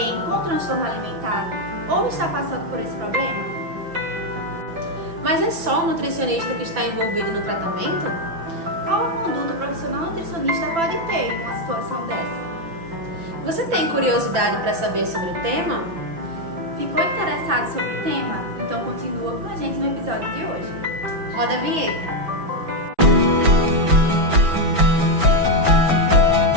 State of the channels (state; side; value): late; left; 5.9 ms